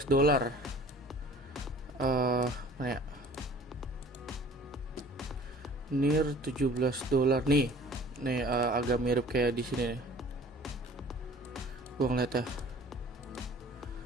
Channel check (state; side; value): normal; both; correlation 0.48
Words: Mana ya? NIR $17 nih. Nih agak mirip kayak di sini nih. Gua ngeliat ya.